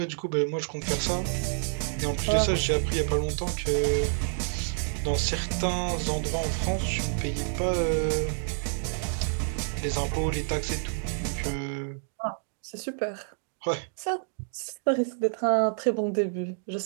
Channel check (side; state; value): left; silent; digital silence